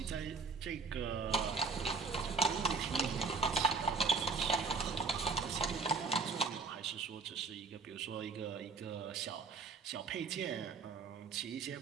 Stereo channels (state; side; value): quieter; left; 4.6 dB